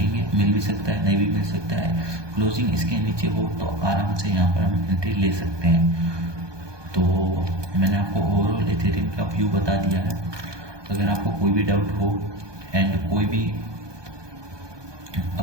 मिल भी सकता है नहीं भी मिल सकता है। क्लोजिंग इसके नीचे हो तो आराम से यहाँ पर हम एंट्री ले सकते हैं। तो मैंने आपको ओवरऑल इथेरियम का व्यू बता दिया है। अगर आपको कोई भी डाउट हो एंड कोई भी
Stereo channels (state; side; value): late; left; 1.2 ms